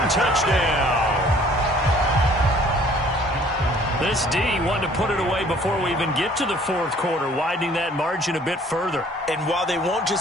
touchdown. This D wanted to put it away before we even get to the 4th quarter, widening that margin a bit further. And while they won't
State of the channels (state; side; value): normal; both; correlation 0.56